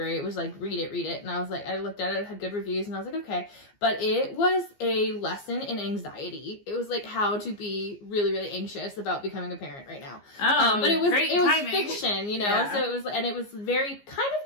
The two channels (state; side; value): late; right; 15 ms